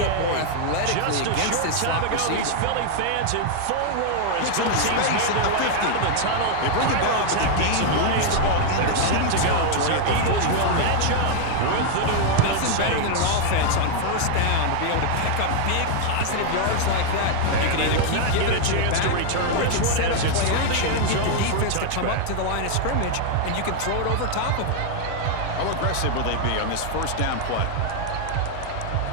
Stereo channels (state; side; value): different; both; correlation 0.00